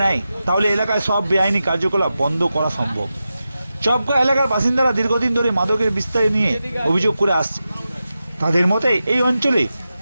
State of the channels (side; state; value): both; inverted; correlation -0.91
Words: নেয় তাহলে এলাকায় সব বেআইনি কার্যকলাপ বন্ধ করা সম্ভব। চপগা এলাকার বাসিন্দারা দীর্ঘদিন ধরে মাদকের বিস্তার নিয়ে অভিযোগ করে আসছে। তাদের মতে এই অঞ্চলে